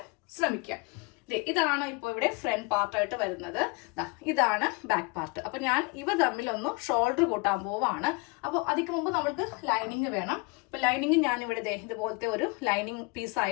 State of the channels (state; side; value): quieter; right; 29.4 dB